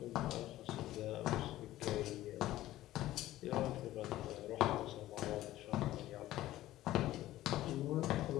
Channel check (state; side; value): quieter; right; 15.1 dB